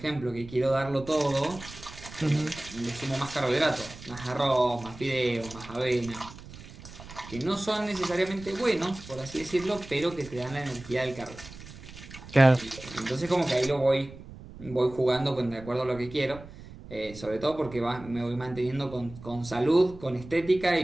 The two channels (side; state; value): right; noise; rumble, 16 dB below the sound